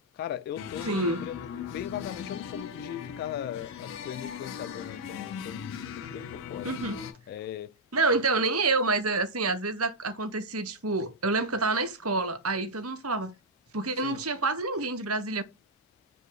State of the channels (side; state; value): both; normal; correlation -0.05